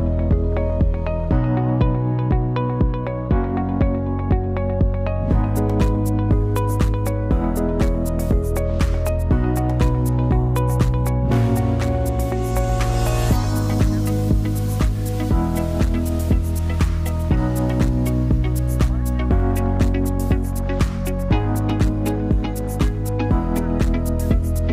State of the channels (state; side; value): identical; both; correlation 1.00